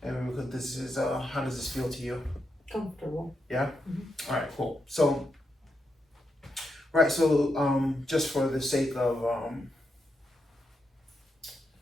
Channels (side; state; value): both; normal; correlation 0.84